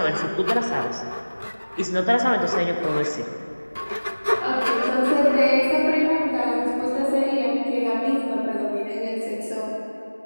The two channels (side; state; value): both; inverted; correlation -1.00